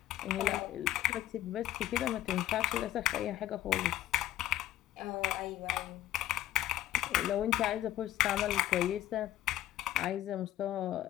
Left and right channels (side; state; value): right; quieter; 13.3 dB